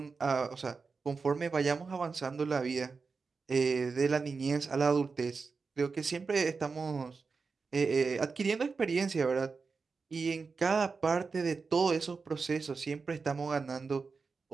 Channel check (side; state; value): left; quieter; 4.7 dB